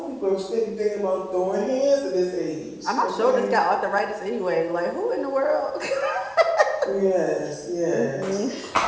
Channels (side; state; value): both; identical; correlation 1.00